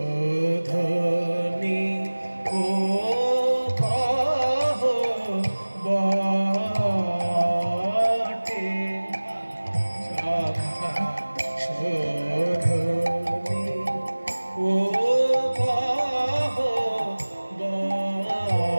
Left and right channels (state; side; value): inverted; both; correlation -1.00